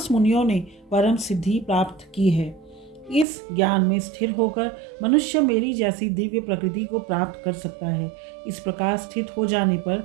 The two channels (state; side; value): drops out; left; at 3.2 s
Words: मुनियों ने परम सिद्धि प्राप्त की है। इस ज्ञान में स्थिर होकर मनुष्य मेरी जैसी दिव्य प्रकृति को प्राप्त कर सकता है। इस प्रकार स्थित हो जाने